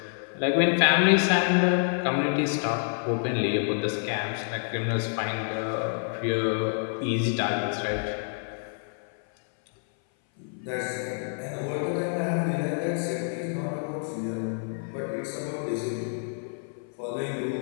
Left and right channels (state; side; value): silent; right; 57 dB below the other